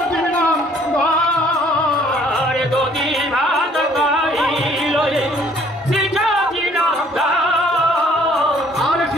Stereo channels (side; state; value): both; normal; correlation 0.60